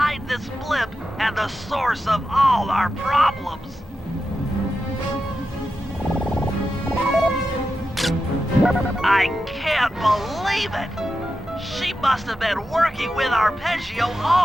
this blimp and the source of all our problems. I can't believe it! She must have been working with Arpeggio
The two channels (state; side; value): normal; both; correlation 0.90